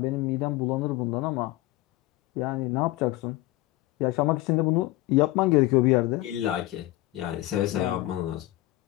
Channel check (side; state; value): right; quieter; 17.8 dB